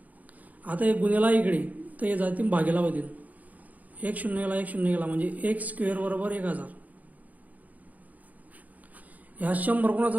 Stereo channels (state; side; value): late; left; 0.077 ms